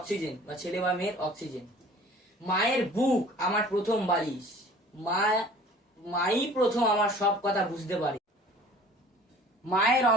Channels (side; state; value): both; normal; correlation 0.48